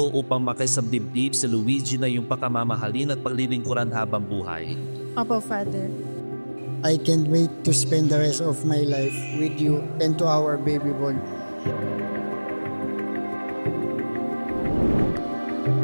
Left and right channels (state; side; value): inverted; both; correlation -1.00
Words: upang makisabdibdib si Luigi na iyong pakamamahalin at paglilingkuran habang buhay? Opo, Father. I can't wait to spend the rest of my life with you and to our baby boy.